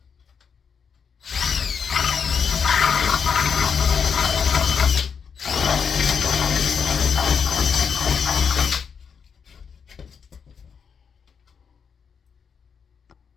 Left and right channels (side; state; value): right; quieter; 6.5 dB